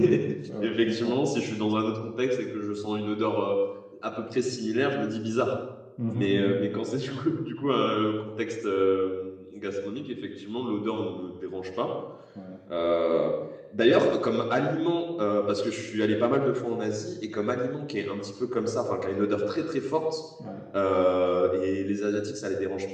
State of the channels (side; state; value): both; identical; correlation 1.00